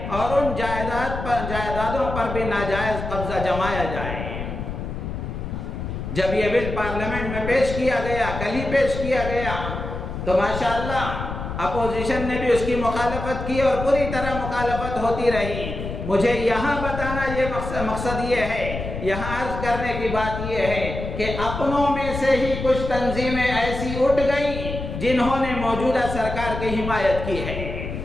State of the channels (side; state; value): left; noise; rumble, 6 dB below the sound